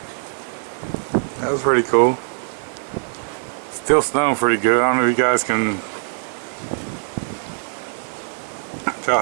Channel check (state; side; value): silent; left; digital silence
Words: That was pretty cool. Still snowing pretty good. I don't know if you guys can tell